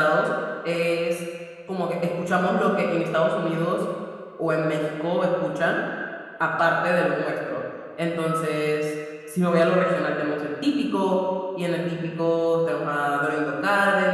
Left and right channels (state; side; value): identical; both; correlation 1.00